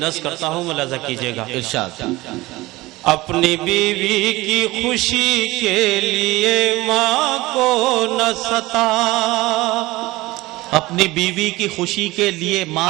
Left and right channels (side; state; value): left; quieter; 19.7 dB